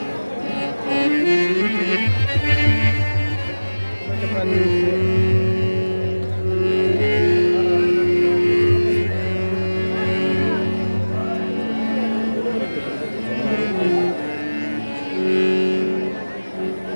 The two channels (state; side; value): inverted; both; correlation -1.00